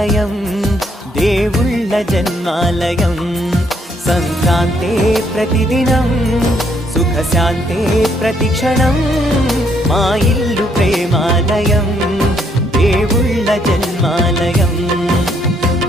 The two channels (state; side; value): normal; both; correlation 0.70